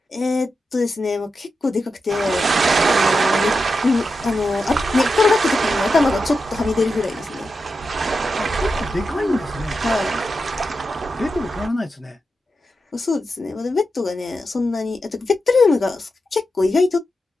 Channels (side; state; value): both; normal; correlation 0.88